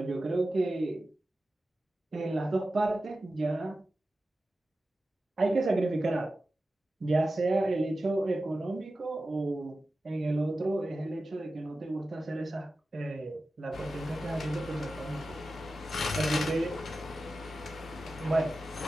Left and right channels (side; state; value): both; normal; correlation 0.94